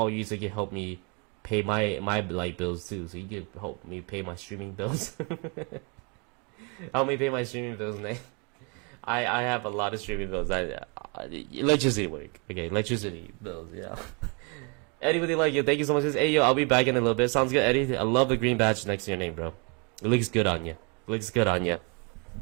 you so you can help me pay my light bills too. So you can help me pay my streaming bills. Help me pay my streaming bills, Nate. I have a lot of streaming bills. Electricity work. Okay, electricity bills. Yeah. Anybody like you? Thank you so much. Hey yo, I'll be back in a little bit. Sounds good, Eddie. I love the green badge next to your name, bro. It looks good on you. Looks good on you.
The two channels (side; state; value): left; quieter; 33.5 dB